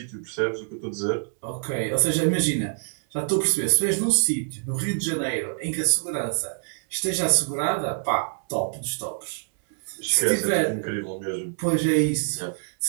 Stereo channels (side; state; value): left; silent; 61 dB below the other